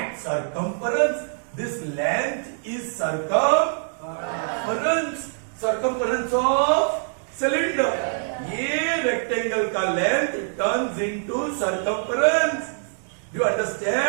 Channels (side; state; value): left; silent; digital silence